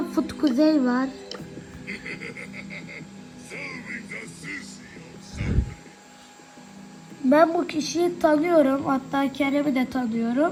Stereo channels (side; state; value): both; identical; correlation 1.00